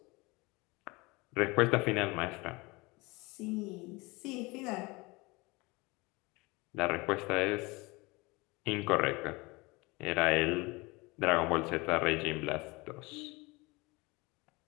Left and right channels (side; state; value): right; quieter; 24.5 dB